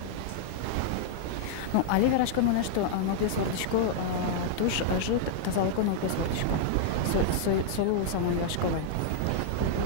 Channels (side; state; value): both; different; correlation -0.01